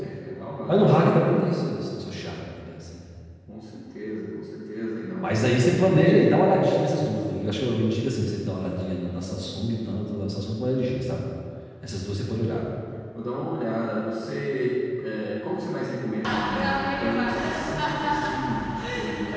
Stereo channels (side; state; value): both; identical; correlation 1.00